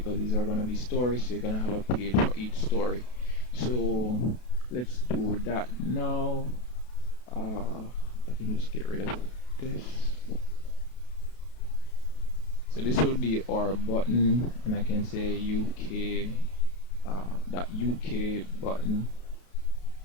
these are gonna be stories, so you're gonna have a page for each story. So let's do that now. I can just get rid of this. So this will be our button, and I can say UK that UK button.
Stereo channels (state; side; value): late; right; 32 ms